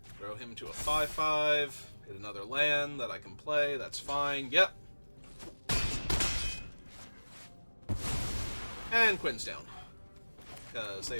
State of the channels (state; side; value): inverted; both; correlation -1.00